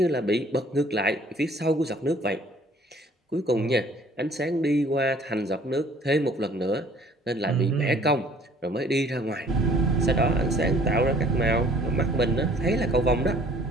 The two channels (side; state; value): both; normal; correlation 0.55